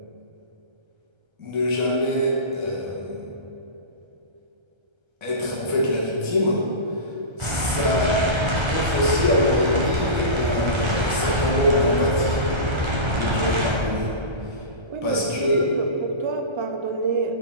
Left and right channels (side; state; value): left; late; 1.3 ms